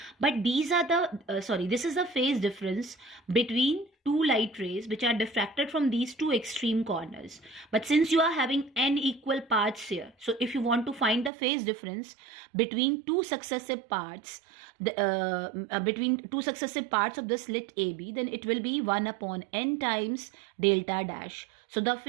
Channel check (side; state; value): left; drops out; at 11.3 s